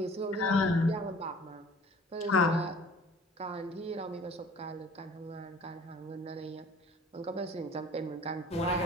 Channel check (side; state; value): both; normal; correlation 0.49